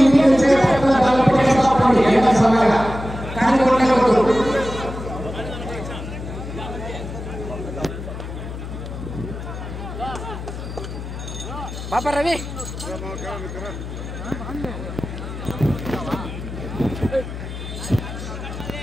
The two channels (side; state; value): left; noise; hum, 8 dB below the sound